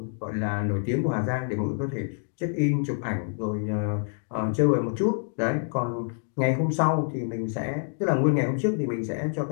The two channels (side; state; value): right; silent; 60 dB below the other